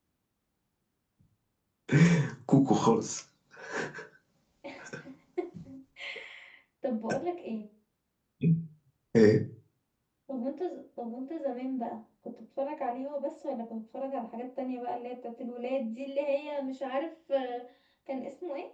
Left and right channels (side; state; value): both; identical; correlation 1.00